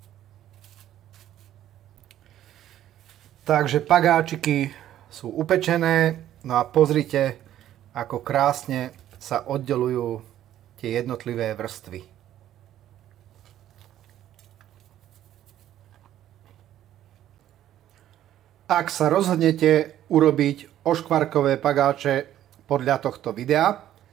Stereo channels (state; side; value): quieter; left; 12.1 dB